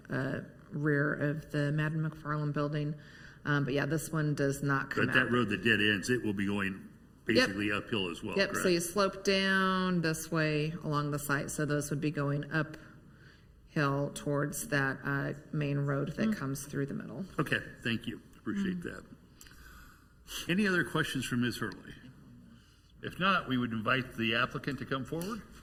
rear of the Madden McFarland building. But yeah, this one does not come out. But that road that dead ends, it will be going basically uphill as well. Yep, correct? so you slope down this way along the site, so those would be going uphill towards that main road that comes through the middle. Okay, thank you. Appreciate that. Any other questions for Ms. Hurley? If not, we would invite the applicant to come forward.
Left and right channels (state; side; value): identical; both; correlation 1.00